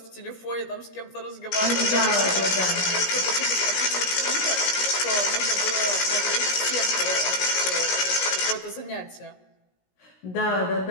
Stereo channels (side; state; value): right; late; 17 ms